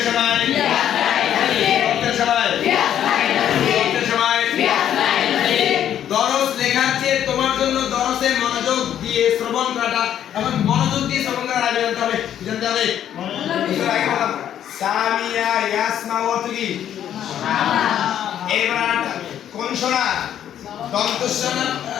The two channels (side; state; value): right; quieter; 10.3 dB